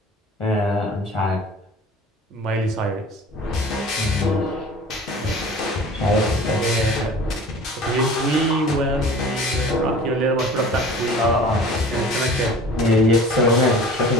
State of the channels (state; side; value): normal; both; correlation 0.43